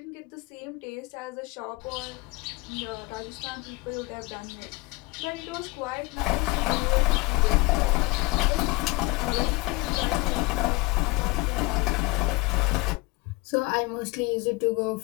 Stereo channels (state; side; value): quieter; right; 23.8 dB